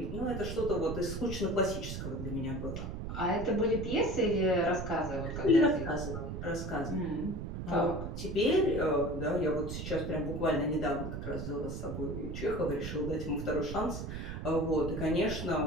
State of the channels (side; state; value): right; noise; rumble, 6 dB below the sound